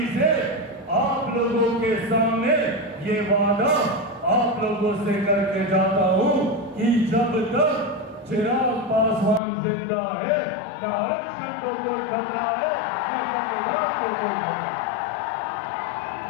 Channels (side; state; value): right; drops out; at 9.4 s